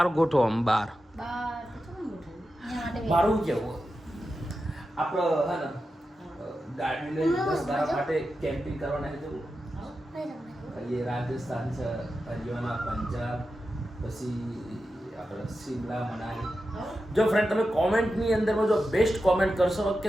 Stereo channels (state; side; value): normal; both; correlation 0.91